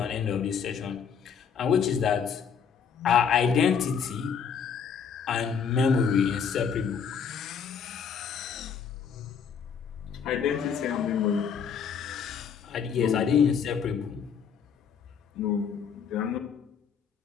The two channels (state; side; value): quieter; right; 6.9 dB